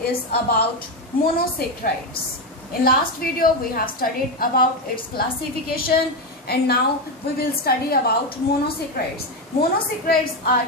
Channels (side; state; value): both; normal; correlation 0.11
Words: about monosaccharides. In last video we have studied about its classification, and now we will study about monosaccharides. Monosaccharides are